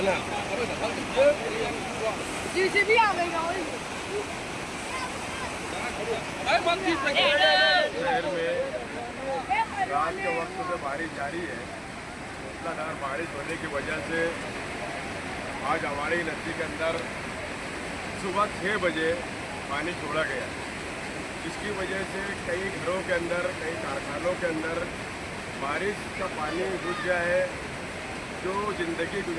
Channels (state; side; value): identical; both; correlation 1.00